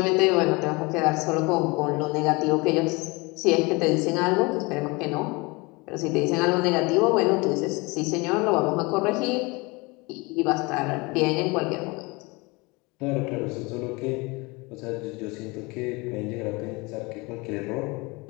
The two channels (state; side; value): quieter; right; 25.8 dB